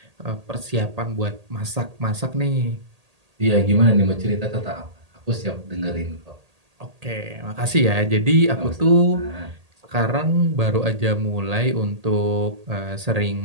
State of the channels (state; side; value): late; left; 1.8 ms